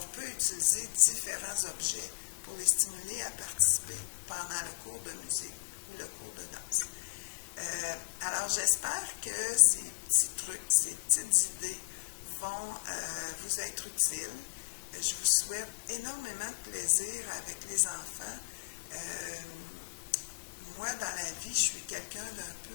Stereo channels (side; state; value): right; quieter; 36.8 dB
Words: peut utiliser différents objets pour les stimuler à participer pendant le cours de musique ou le cours de danse. Alors, j'espère que ces petits trucs, ces petites idées vont vous être utiles. Je vous souhaite énormément de plaisir avec les enfants. Moi, dans la vie, je suis quelqu'un d'un